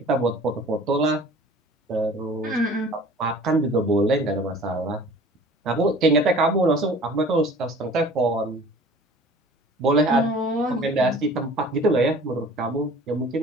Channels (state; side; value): normal; both; correlation 0.46